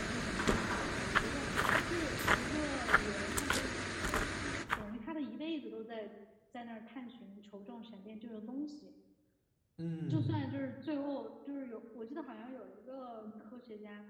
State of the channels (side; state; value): both; identical; correlation 1.00